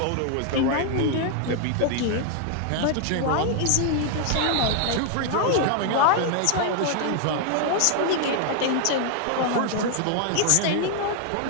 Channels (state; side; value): different; both; correlation 0.00